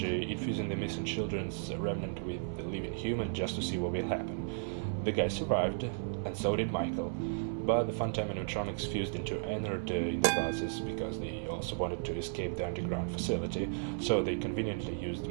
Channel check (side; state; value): left; silent; 55 dB below the other